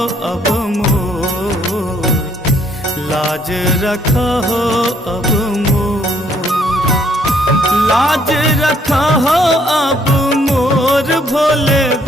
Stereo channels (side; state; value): both; normal; correlation 0.66